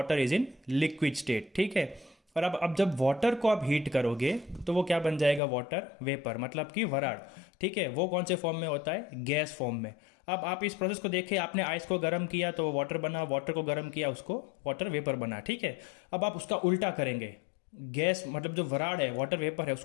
is in liquid state. ठीक है, और अब जब वाटर को आप हीट करोगे तो वो क्या बन जाएगा, वाटर वेपर, मतलब कि वराड़। ठीक है, वो कौन से फॉर्म में होता है, गैस फॉर्म में। अब आप इस प्रोसेस को देखिए, आपने आइस को गर्म किया तो वो वाटर बना, वाटर को गर्म किया उसको वाटर वेपर बना। ठीक है, अब आप उसका उल्टा करेंगे, गैस मतलब जो वराड़ है, वाटर वेपर है,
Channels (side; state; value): right; drops out; at 5.4 s